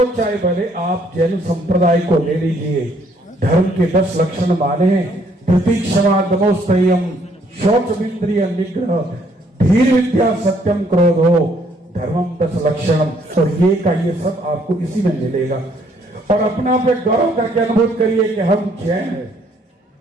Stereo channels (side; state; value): both; normal; correlation 0.66